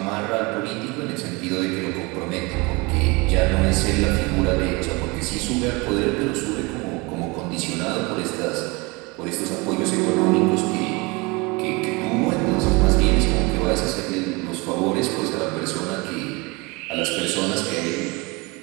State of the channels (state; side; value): quieter; left; 26.2 dB